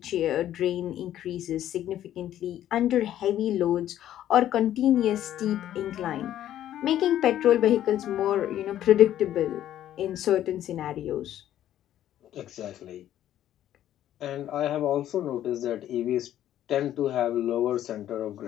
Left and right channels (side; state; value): right; quieter; 11.9 dB